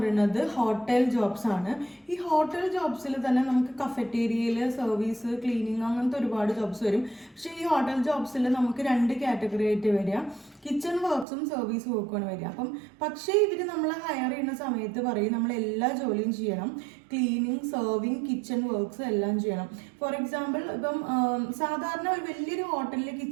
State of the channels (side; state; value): left; drops out; at 11.2 s